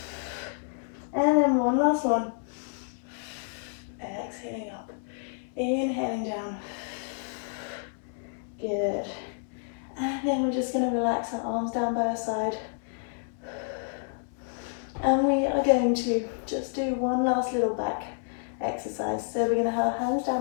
And then one last one. Exhaling up, inhaling down. Good. And then we're just going to relax our arms down by our side. And we are going to just do one last little back exercise. So we're going to have our hands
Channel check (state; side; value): silent; right; digital silence